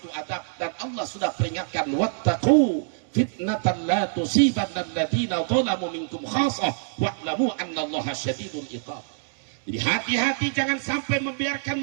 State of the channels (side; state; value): left; silent; digital silence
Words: adab, dan Allah sudah peringatkan, wattaqu fitnatan la tusibanna alladziina dzalamu minkum khassah wa'lamu annallaha syadidul iqab. Jadi hati-hati, jangan sampai membiarkan